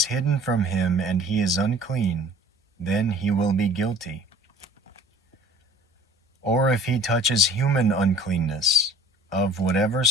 hidden from him and he is unclean, then he will be guilty. Or if he touches human uncleanness, of whatever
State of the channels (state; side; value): normal; both; correlation 0.49